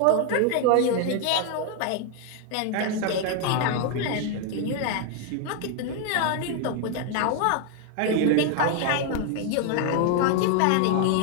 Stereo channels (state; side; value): different; both; correlation 0.00